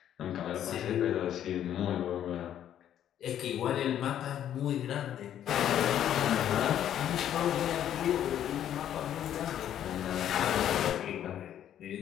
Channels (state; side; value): quieter; right; 10.6 dB